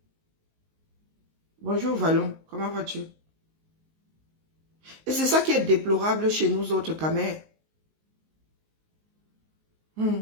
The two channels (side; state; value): left; late; 19 ms